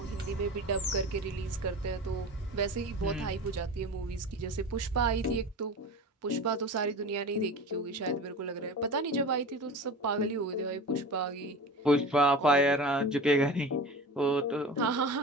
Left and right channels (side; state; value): both; normal; correlation 0.32